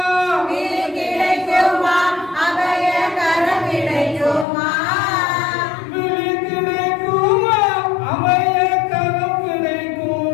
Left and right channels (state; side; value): drops out; right; at 4.5 s